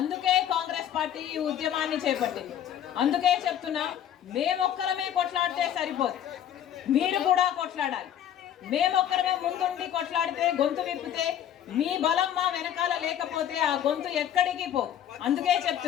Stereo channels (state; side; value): quieter; right; 10.4 dB